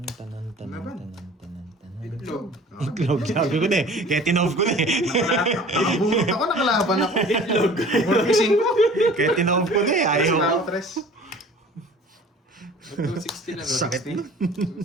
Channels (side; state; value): both; normal; correlation 0.46